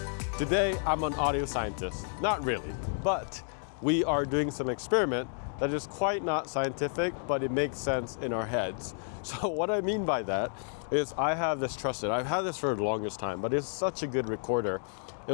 Today, I'm an audio scientist. Not really, but we are doing some experiment that is quite not scientific, but it makes sense in our heads. So what I mean by that is I have this trusted, I've had this for the longest time, but it's such a good recorder.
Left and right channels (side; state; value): right; silent; 56 dB below the other